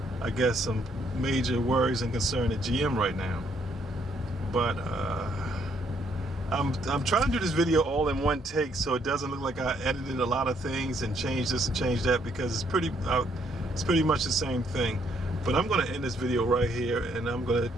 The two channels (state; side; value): normal; both; correlation 0.70